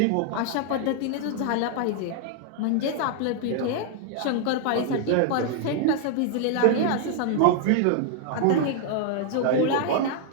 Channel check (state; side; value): different; both; correlation 0.00